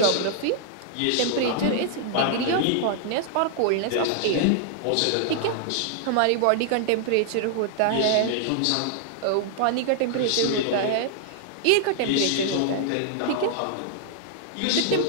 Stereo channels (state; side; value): different; both; correlation -0.01